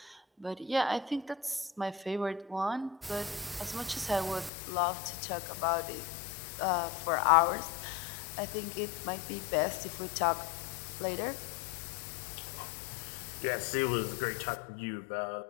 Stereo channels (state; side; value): drops out; right; at 4.5 s